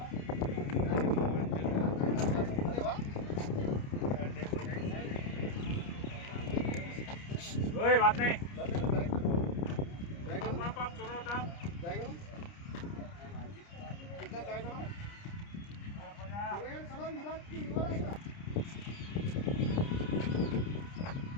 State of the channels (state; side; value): late; right; 29 ms